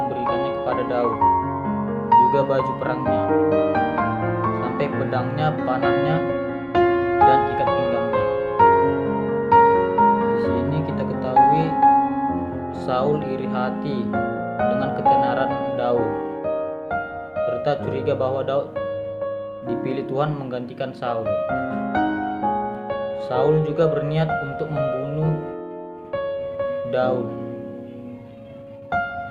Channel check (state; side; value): identical; both; correlation 1.00